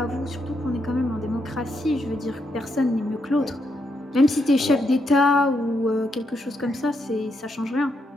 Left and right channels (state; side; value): normal; both; correlation 0.80